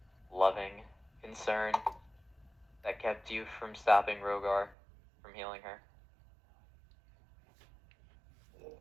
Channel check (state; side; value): drops out; left; at 4.8 s